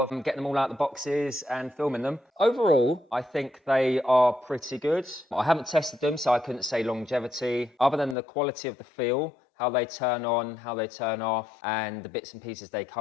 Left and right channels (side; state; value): right; drops out; at 8.2 s